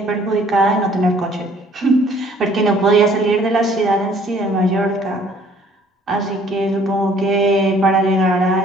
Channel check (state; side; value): normal; both; correlation 0.58